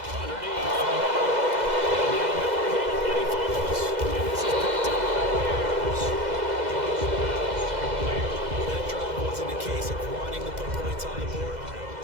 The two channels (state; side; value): late; left; 2.0 ms